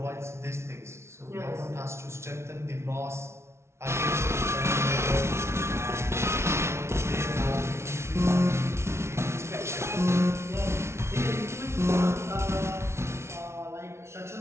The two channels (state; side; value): late; left; 0.13 ms